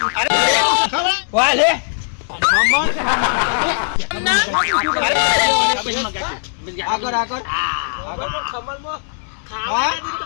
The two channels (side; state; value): right; silent; 67 dB below the other